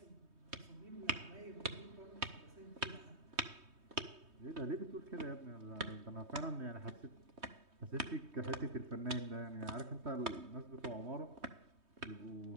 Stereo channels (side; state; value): left; late; 3.2 ms